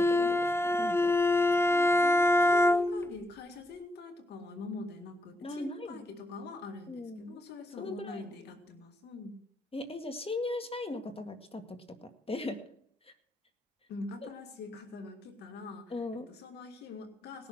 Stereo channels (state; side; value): normal; both; correlation 0.81